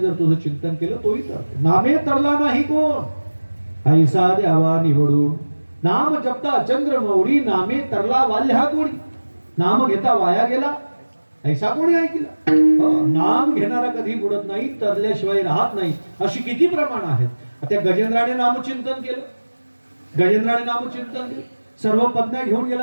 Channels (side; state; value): both; inverted; correlation -1.00